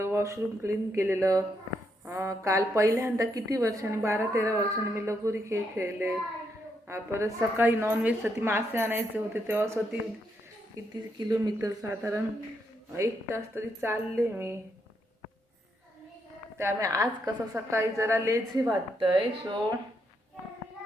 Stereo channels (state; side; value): normal; both; correlation 0.78